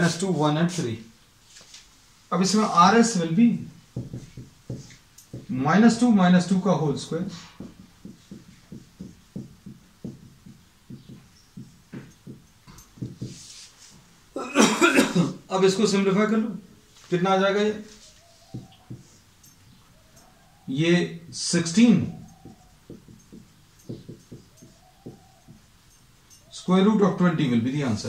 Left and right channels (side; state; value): both; identical; correlation 1.00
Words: 1 and 3। अब इसमें RS विल बी -2 का होल स्क्वायर अब इसको सिंप्लीफाई कर लो, कितना आ जाएगा ये 16 square root of 20 will be the